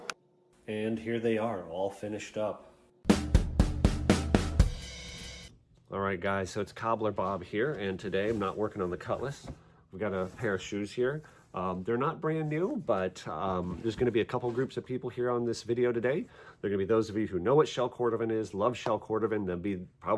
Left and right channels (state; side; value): identical; both; correlation 1.00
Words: And here they are, all finished up. All right, guys, so it's Cobbler Bob here, and today I'm not working on the cutlass. We've got a pair of shoes here. They're not brand new, but there's going to be a couple groups of people here on this video today. There are going to be those of you who know what shell Cordovan is, love shell Cordovan. There'll be